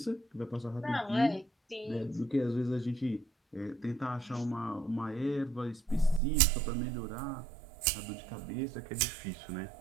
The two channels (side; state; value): left; drops out; at 6.2 s